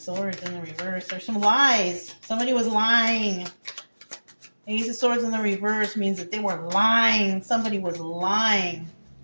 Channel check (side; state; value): both; inverted; correlation -1.00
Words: in the reverse. There's some lies. Somebody was lying. Ace of Swords in the reverse means that they were lying. Somebody was lying.